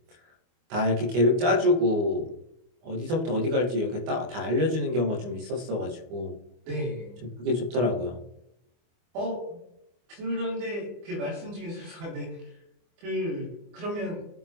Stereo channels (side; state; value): left; late; 24 ms